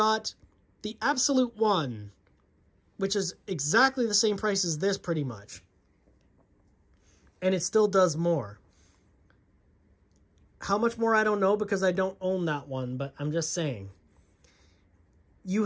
the Absolute One, which is exactly the same price as this pretty much. And it still does more. How much more, I don't know, because I don't own that one, but I'm just saying. You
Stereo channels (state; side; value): identical; both; correlation 1.00